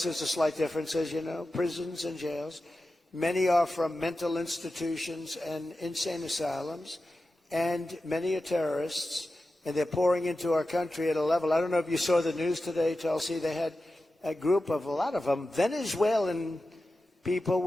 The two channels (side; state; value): both; normal; correlation 0.93